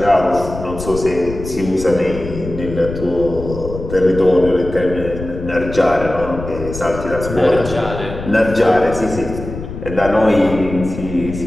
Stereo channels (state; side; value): noise; left; rumble, 10 dB below the sound